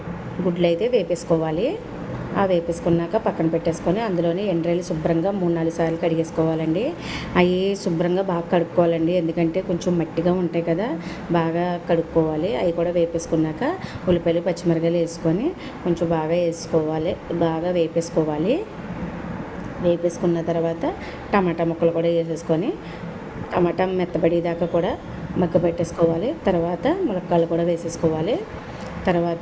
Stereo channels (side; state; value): both; identical; correlation 1.00